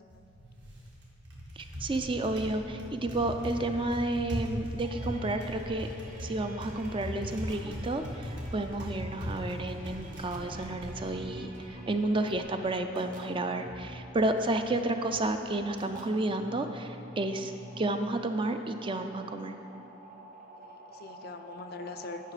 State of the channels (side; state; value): both; normal; correlation 0.55